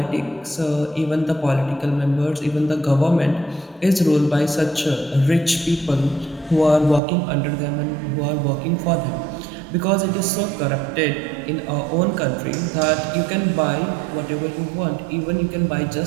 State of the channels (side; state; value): left; drops out; at 7.0 s